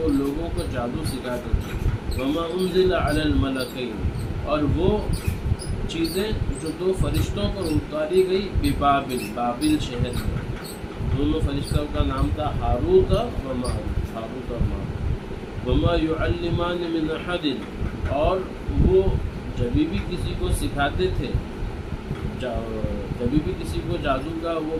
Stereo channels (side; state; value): both; identical; correlation 1.00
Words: لوگوں کو جادو سکھاتے تھے. وما انزل علی الملکین، اور وہ چیزیں جو 2 فرشتوں پر اتاری گئی ببابل، بابل شہر میں. دونوں فرشتوں کا نام تھا ہاروت و ماروت، ہاروت اور ماروت. وما يعلمان من احد، اور وہ جبھی بھی کسی کو سکھاتے تھے، جبھی بھی کسی کو جادو کا وہ